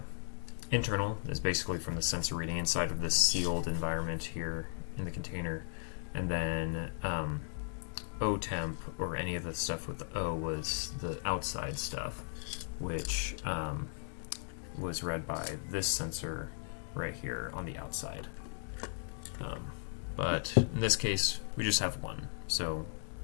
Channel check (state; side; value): silent; right; digital silence